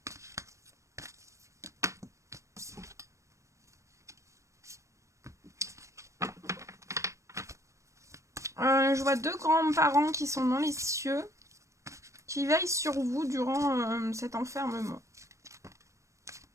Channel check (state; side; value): late; left; 0.15 ms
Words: Je vois deux grands-parents qui sont dans les cieux, qui veillent sur vous durant cet enfermement.